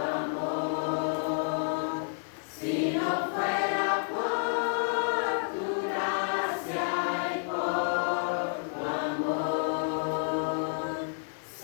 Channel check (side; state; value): right; silent; 58 dB below the other